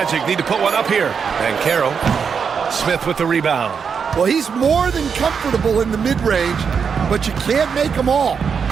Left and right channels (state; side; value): quieter; left; 6.4 dB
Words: need to put one up here. And Carroll. Smith with the rebound. Well, he's more than comfortable in the mid-range, but you can't make them all.